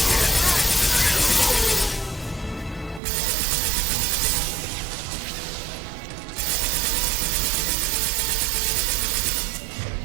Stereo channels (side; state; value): left; drops out; at 3.0 s